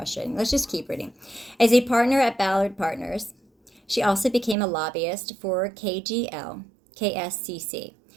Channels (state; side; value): drops out; left; at 4.5 s